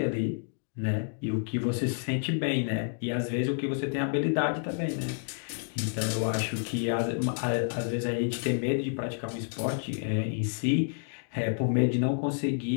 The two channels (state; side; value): silent; right; digital silence